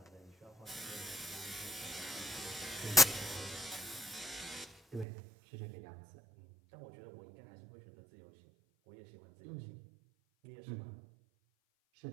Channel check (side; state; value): left; drops out; at 5.1 s